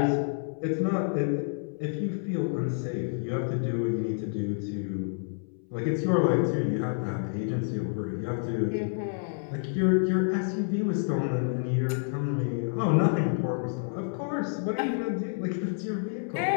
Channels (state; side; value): silent; right; 59 dB below the other